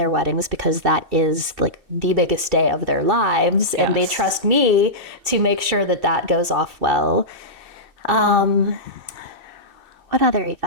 weddings because that is like the biggest day of their lives. And they trust me to make sure that that goes off well. What other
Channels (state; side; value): late; left; 2.6 ms